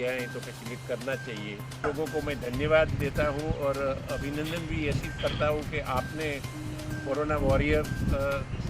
है तो फैसिलिटेट करना चाहिए। लोगों को मैं धन्यवाद देता हूँ और अभिनंदन भी ऐसी करता हूँ कि आपने कोरोना वॉरियर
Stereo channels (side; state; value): both; identical; correlation 1.00